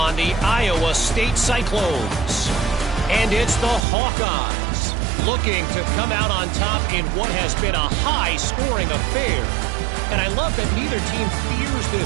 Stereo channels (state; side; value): drops out; left; at 3.9 s